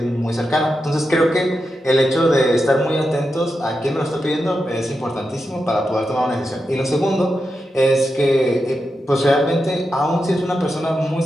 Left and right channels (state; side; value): normal; both; correlation 0.88